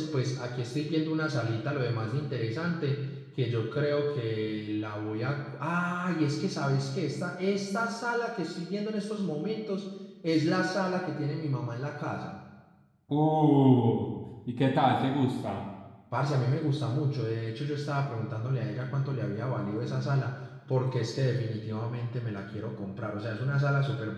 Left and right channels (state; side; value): identical; both; correlation 1.00